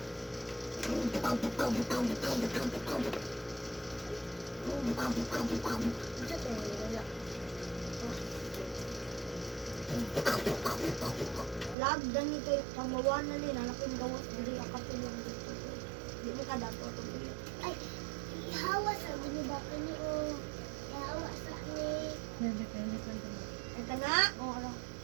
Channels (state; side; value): drops out; left; at 11.8 s